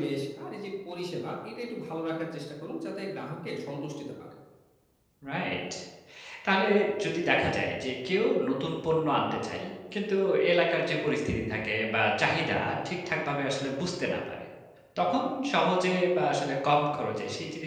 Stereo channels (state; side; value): identical; both; correlation 1.00